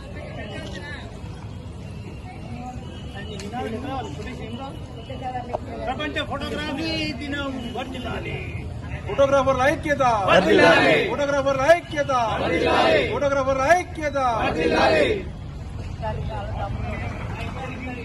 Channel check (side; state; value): both; identical; correlation 1.00